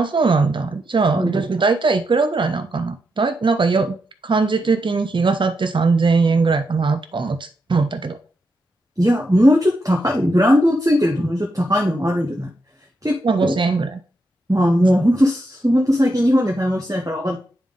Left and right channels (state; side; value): normal; both; correlation 0.84